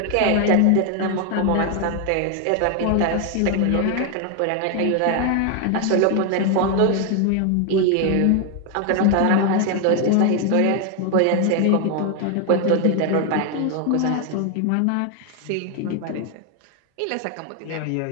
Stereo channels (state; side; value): different; both; correlation 0.01